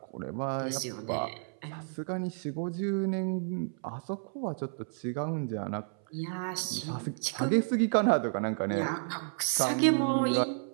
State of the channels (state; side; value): silent; left; 57 dB below the other